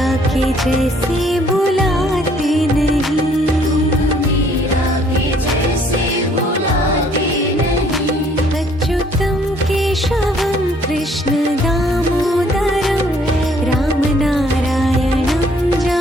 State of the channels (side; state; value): both; normal; correlation 0.62